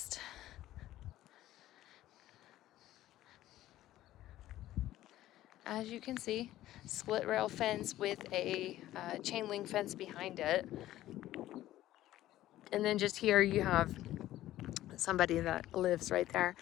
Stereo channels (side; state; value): right; quieter; 14.4 dB